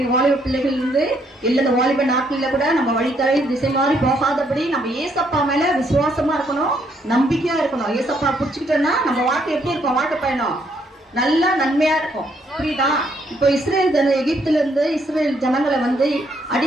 வாலிப பிள்ளைகள் இருந்து இல்ல இந்த வாலிப நாட்கள்ல கூட நம்ம வழித்தலை திசை மாறி போகாதபடி நம்ம ஏசப்பா மேல விசுவாசமா இருக்கணும், நம்பிக்கையா இருக்கணும். ஏசப்பா புடிச்சுக்கிட்டோம்னா நம்ம வாழ்க்கை எப்படி இருக்கும்? வாழ்க்கை பயணம் நல்லா நன்மையா இருக்கும். புரியுதா? இப்போ எகிப்துல இருந்து இஸ்ரேல் ஜனங்களை வந்து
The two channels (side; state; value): both; normal; correlation 0.71